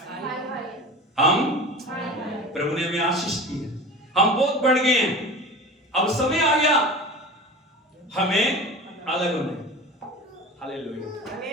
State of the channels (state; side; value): normal; both; correlation 0.34